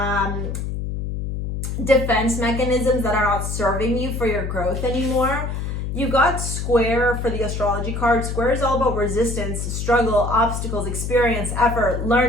defense mechanisms that are not serving you for your growth anymore. You got Square for the astrology card. Square is all about resistance, struggle, obstacles, experience, effort,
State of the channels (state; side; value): noise; left; hum, 4 dB below the sound